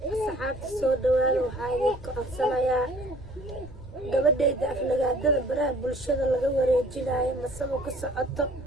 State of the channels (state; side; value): noise; left; rumble, 18 dB below the sound